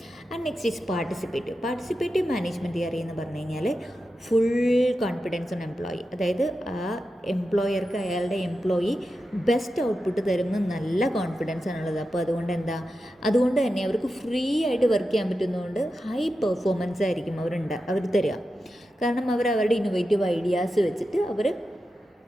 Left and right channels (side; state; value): both; normal; correlation 0.90